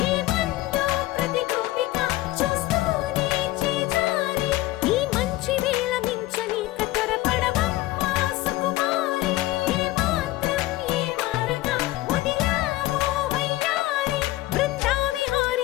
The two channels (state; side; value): quieter; right; 17.6 dB